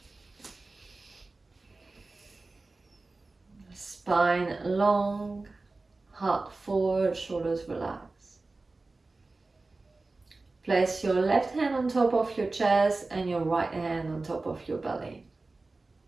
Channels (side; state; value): left; quieter; 3.4 dB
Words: Spine long, heart forward, shoulders relaxed. Place your left hand on top of your chest and your right hand on top of your belly.